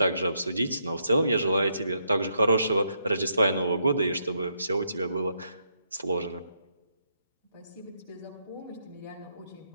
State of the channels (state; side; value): inverted; both; correlation -0.78